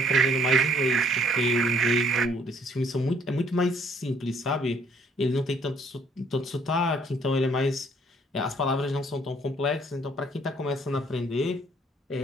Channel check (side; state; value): both; normal; correlation 0.63